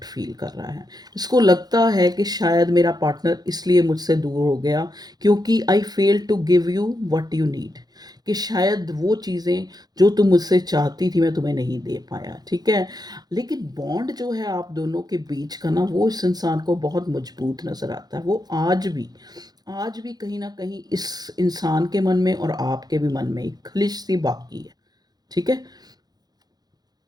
फ़ील कर रहा है। इसको लगता है कि शायद मेरा पार्टनर इसलिए मुझसे दूर हो गया क्योंकि I fail to give you what you need, कि शायद वो चीज़ें जो तुम मुझसे चाहती थी मैं तुम्हें नहीं दे पाया, ठीक है? लेकिन बॉन्ड जो है आप दोनों के बीच का ना वो इस इंसान को बहुत मज़बूत नज़र आता है। वो आज भी कहीं न कहीं इस इंसान के मन में और आपके भी मन में एक खलिश-सी बाकी है, ठीक है?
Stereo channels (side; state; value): left; late; 0.19 ms